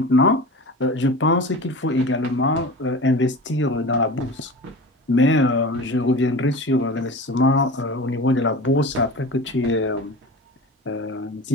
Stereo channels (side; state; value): both; normal; correlation 0.33